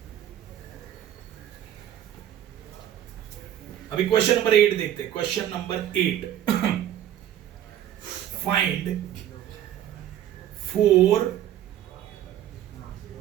अभी क्वेश्चन नंबर 8 देखते हैं। Question number 8 find 4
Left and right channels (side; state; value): left; quieter; 11.4 dB